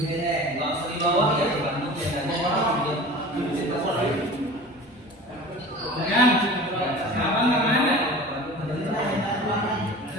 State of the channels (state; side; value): normal; both; correlation 0.38